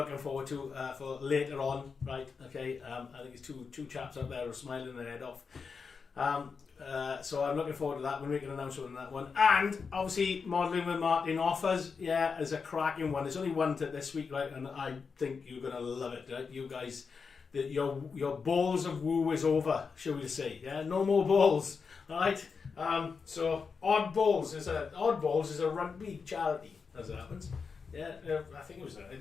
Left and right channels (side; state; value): right; quieter; 5.4 dB